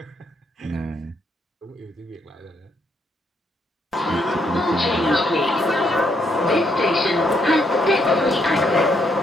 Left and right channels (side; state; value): both; normal; correlation 0.74